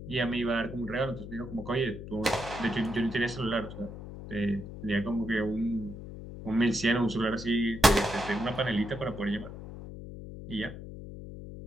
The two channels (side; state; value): left; noise; hum, 11 dB below the sound